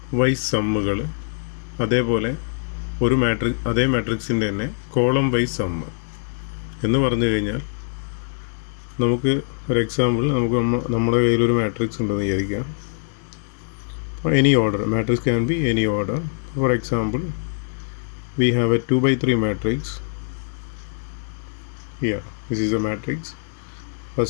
വൈസ് സമ്മുകൾ, അതേപോലെ അതേ മാട്രിക്സിൻ്റെ തന്നെ കോളം വൈസ് സമ്മ് എന്ന് പറഞ്ഞു കഴിഞ്ഞാൽ, നമുക്ക് ഒരു എക്സാമ്പിൾ, നമ്മുടെ കയ്യിലൊരു മാട്രിക്സ് ഉണ്ടെന്ന് വിചാരിക്കാം. Any order matrix can be any order. For example, we have a 2x3 matrix. Here, this is a matrix.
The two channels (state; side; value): silent; right; digital silence